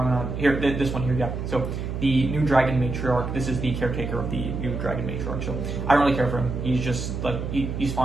not here. This one here, yeah. So the new dragon matriarch. This is the caretaker of the new dragon matriarch. So I don't really care for him. He's just like he's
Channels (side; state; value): right; noise; hum, 4 dB below the sound